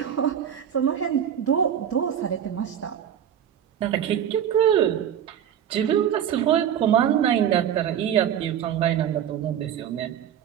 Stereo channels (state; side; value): quieter; left; 9.5 dB